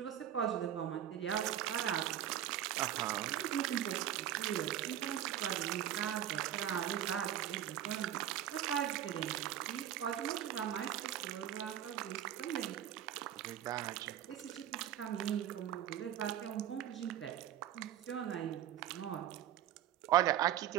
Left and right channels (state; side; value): quieter; left; 11.1 dB